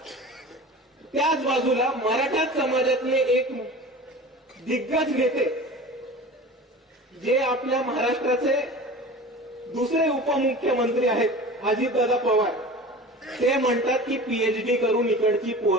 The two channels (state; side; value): normal; both; correlation 0.36